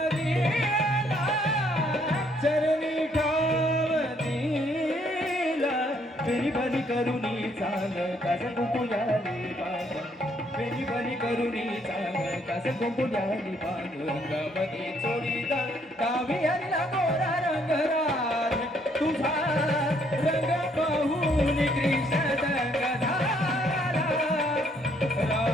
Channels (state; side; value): normal; both; correlation 0.68